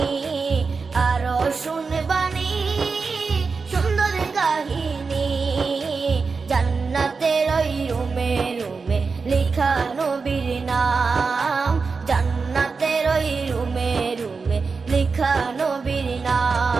আরো শুনবানি সুন্দর কাহিনী। জান্নাতের ওই রুমে রুমে লেখা নবীর নাম, জান্নাতের ওই রুমে রুমে লেখা নবীর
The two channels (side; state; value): left; quieter; 4.7 dB